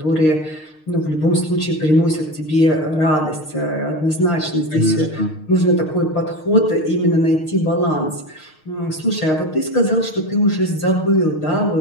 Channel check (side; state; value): right; late; 6.5 ms